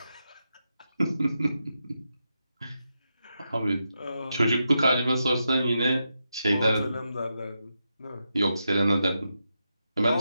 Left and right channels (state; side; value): inverted; both; correlation -0.87